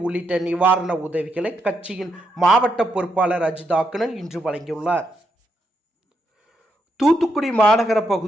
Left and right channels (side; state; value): both; normal; correlation 0.80